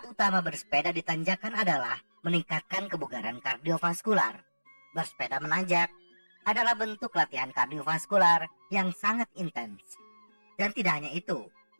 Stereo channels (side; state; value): both; inverted; correlation -1.00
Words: utama bersepeda di tanjakan adalah meningkatkan kebugaran kardiovaskular. Bersepeda menanjak adalah bentuk latihan kardiovaskular yang sangat intens. Dan tidak hanya itu,